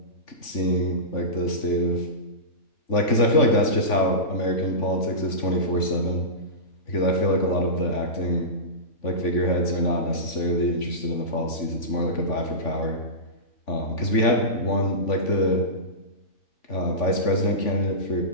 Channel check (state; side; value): late; right; 3.5 ms